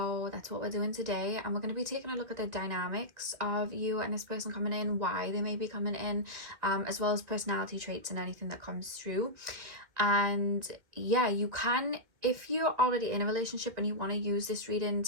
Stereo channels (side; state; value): left; late; 2.1 ms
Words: that's what we're doing today, and we're going to be taking a look at the dynamics of you and this person coming in, why they may be coming in, as well as personality traits and anything that comes through. And yeah, you can, if you're already in a relationship and you want to use this reading